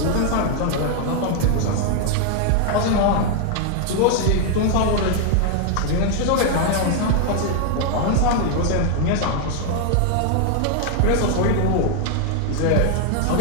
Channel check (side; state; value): both; different; correlation 0.00